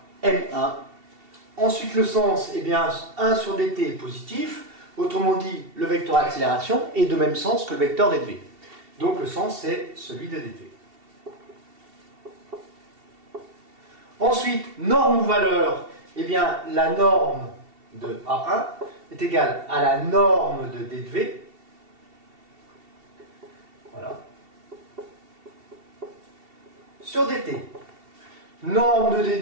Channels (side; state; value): left; late; 2.7 ms